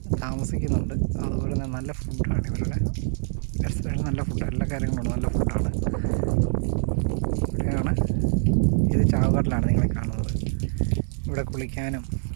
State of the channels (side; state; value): left; silent; 62 dB below the other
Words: താമസിക്കുന്നുണ്ട്. അതുപോലെ തന്നെ നല്ല ഫുഡാണ് ഇവരുടെ റെസ്റ്റോറൻറ്റ്. നല്ല ഫുഡ്, എല്ലാ കാര്യങ്ങളും നല്ല ഫുഡാണ്. ഇവിടെയാണ്, ഇത് ചാവുകടലാണ് നിങ്ങളെ കാണുന്നത്. ഇവിടെ കുളിക്കാനും